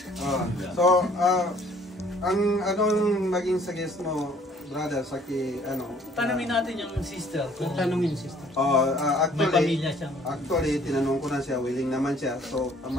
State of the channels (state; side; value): normal; both; correlation 0.58